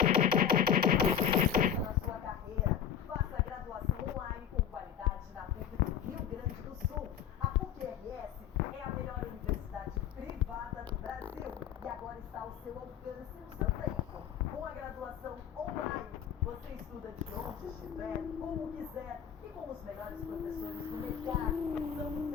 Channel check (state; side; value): quieter; right; 8.8 dB